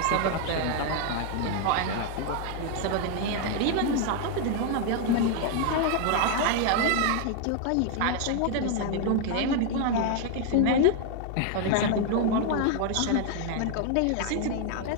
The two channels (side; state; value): both; different; correlation 0.00